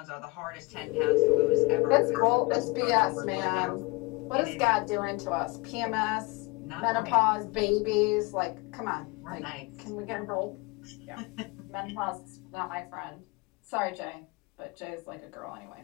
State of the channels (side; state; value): right; quieter; 25.7 dB